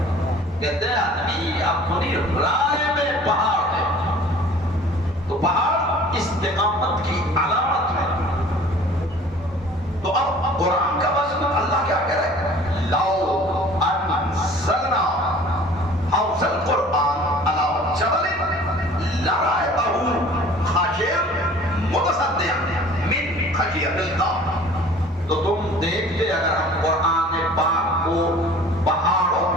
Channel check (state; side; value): normal; both; correlation 0.48